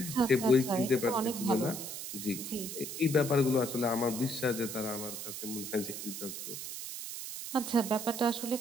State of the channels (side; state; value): right; noise; hiss, 7 dB below the sound